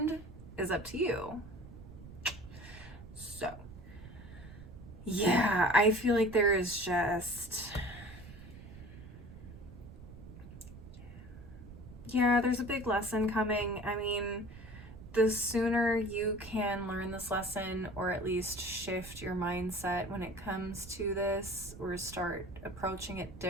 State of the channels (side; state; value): right; noise; rumble, 15 dB below the sound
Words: Is up to you. So yeah, I feel like there is just, yeah, there's a big lesson coming. I mean, the sooner you can learn this lesson, or at least shift your mindset when it comes to this, or start approaching it